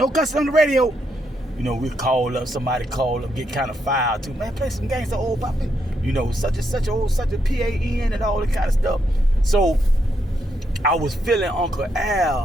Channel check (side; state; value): both; normal; correlation 0.79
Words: cussing on the radio. You know, we call up, somebody call up, get kind of filed too. Man, play some gangsta old poppin'. You know, such a PAN and all that kind of stuff. So I was feeling Uncle